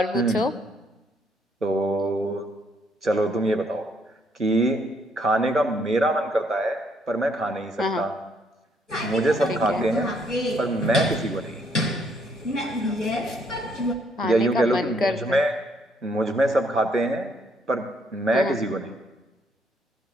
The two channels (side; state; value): both; normal; correlation 0.69